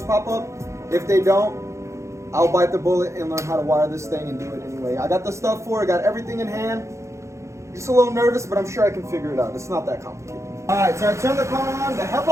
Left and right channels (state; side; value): late; left; 0.14 ms